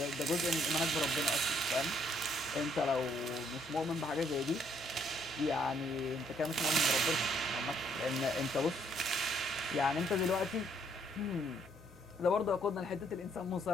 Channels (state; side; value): normal; both; correlation 0.68